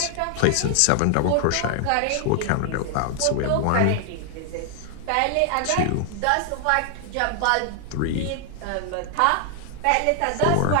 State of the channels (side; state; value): both; different; correlation 0.00